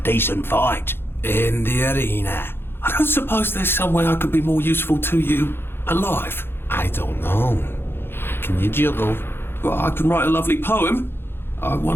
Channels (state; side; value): late; right; 0.11 ms